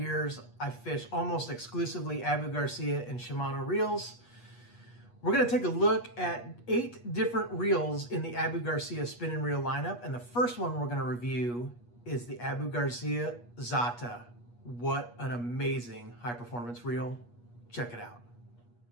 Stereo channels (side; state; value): right; late; 8.3 ms